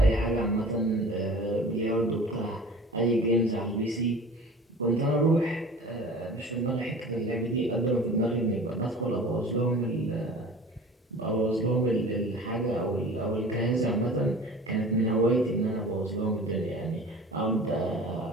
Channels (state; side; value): normal; both; correlation 0.41